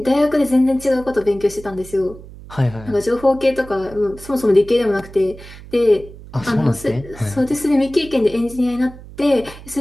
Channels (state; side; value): noise; right; hum, 17 dB below the sound